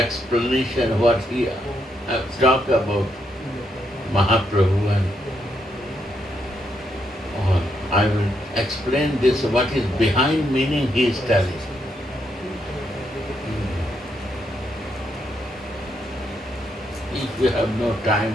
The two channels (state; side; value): normal; both; correlation 0.78